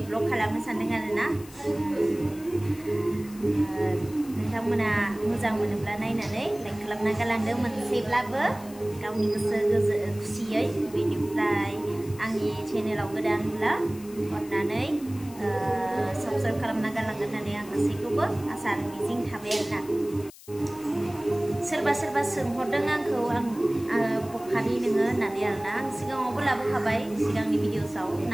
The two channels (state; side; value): noise; left; hiss, 20 dB below the sound